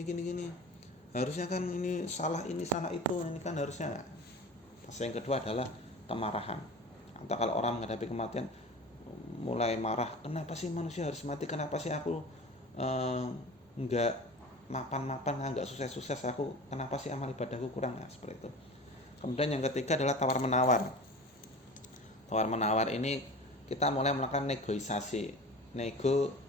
harusnya kan ini salah itu, ini kan harusnya. Fase yang kedua adalah kemarahan. Atau kalau orang menghadapi kematian mulai marah, kenapa sih manusia harus mati, kenapa sih aku nggak mapan, nggak sukses aku, kenapa sih amal ibadahku kurang, seperti itu. Kemudian yang ketiga adalah tawar menawar. Tawar menawar ini kita mulai melakukan negosiasi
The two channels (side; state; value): both; normal; correlation 0.36